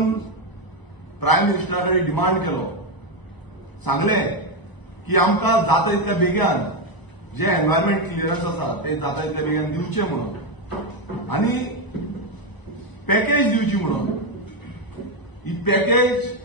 प्रायम मिनिस्टरा कडेन डिमांड केलो, सांगलें की आमकां जाता तितल्या बेगीन जे एनवायरमेंट क्लियरन्स आसा ते जाता तितल्या बेगीन दिवचे म्हणून आनी पॅकेज दिवची म्हणून। ही पॅकेज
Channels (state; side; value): late; right; 1.0 ms